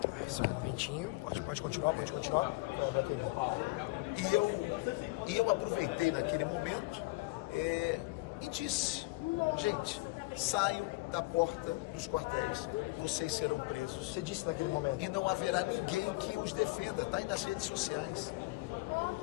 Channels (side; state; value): right; quieter; 23.6 dB